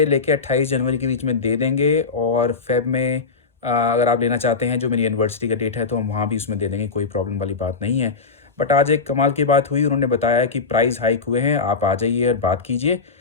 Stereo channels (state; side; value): quieter; right; 4.6 dB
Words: लेके 28 जनवरी के बीच में दे देंगे और फ़ेब में अगर आप लेना चाहते हैं, जो मेरी एनिवर्सरी का डेट है, तो हम वहाँ भी उसमें दे देंगे, कोई प्रॉब्लम वाली बात नहीं है। बट आज एक कमाल की बात हुई, उन्होंने बताया कि प्राइस हाइक हुए हैं, आप आ जाइए और बात कीजिए।